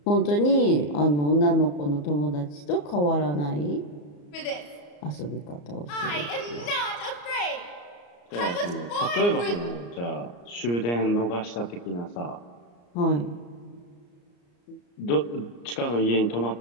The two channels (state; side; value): late; right; 34 ms